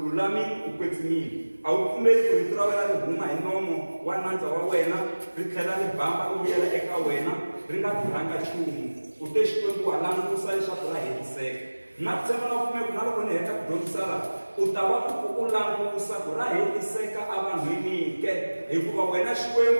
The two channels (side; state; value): both; inverted; correlation -1.00